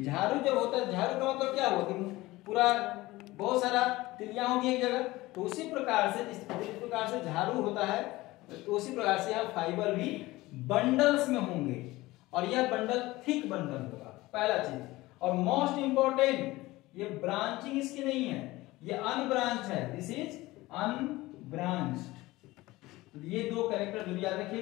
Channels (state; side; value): quieter; right; 19.2 dB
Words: झाड़ू जब होता है, झाड़ू का मतलब क्या हुआ कि पूरा बहुत सारा तिल्लियां होगी एक जगह, तो उसी प्रकार से जिस प्रकार से झाड़ू होता है, तो उसी प्रकार से यहाँ फाइबर भी बंडल्स में होंगे और यह बंडल थिक बंडल होगा, पहला चीज। और मोस्ट इंपॉर्टेंट, ये ब्रांचिंग इसकी नहीं है, ये अनब्रांच है, दिस इज अनब्रांच्ड। तो ये दो कैरेक्टर जरूर याद